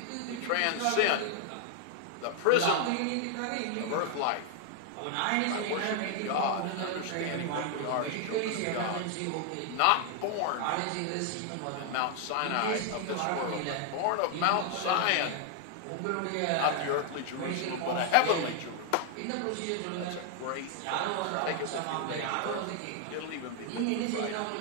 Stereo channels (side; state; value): both; different; correlation 0.00